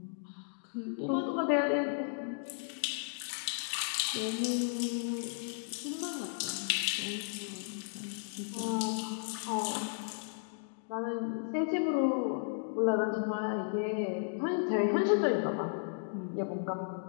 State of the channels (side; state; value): right; silent; digital silence